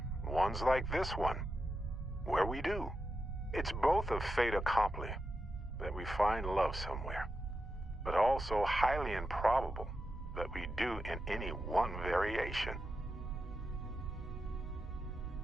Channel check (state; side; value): normal; both; correlation 0.88